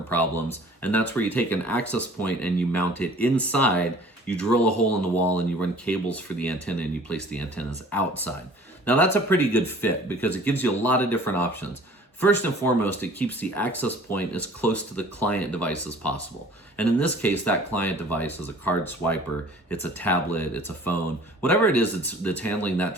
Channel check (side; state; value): both; normal; correlation 0.49